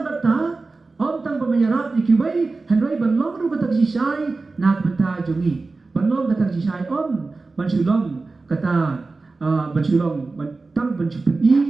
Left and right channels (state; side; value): quieter; left; 3.7 dB